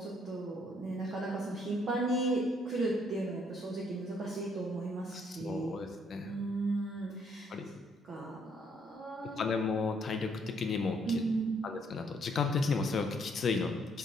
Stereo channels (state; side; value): normal; both; correlation 0.68